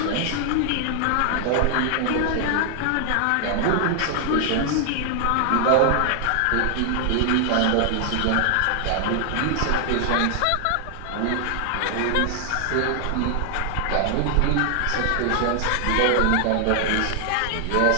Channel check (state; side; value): different; both; correlation 0.00